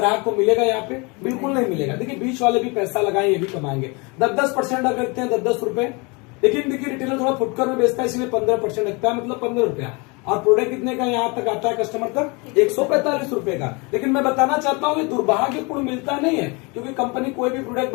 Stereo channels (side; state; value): right; quieter; 28.9 dB